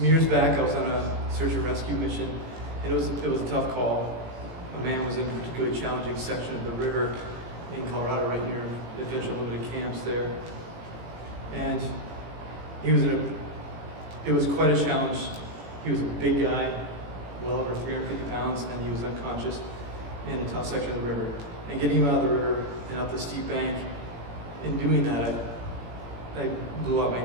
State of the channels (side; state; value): left; late; 18 ms